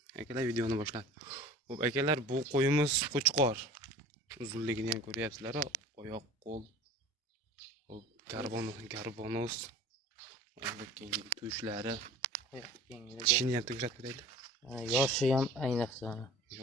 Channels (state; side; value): normal; both; correlation 0.43